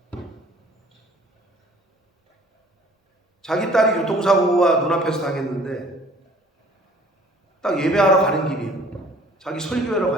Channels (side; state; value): both; normal; correlation 0.53